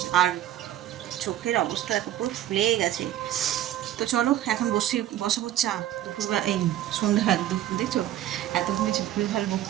আর চোখের অবস্থা এত পুরো ফুলে গেছে। তো চলো এখন বসাবো চা। দুপুরবেলা এই সন্ধ্যাবেলা দুপুর দেখছো এত ঘুমিয়েছি, ভুল ভাল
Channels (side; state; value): left; quieter; 12.5 dB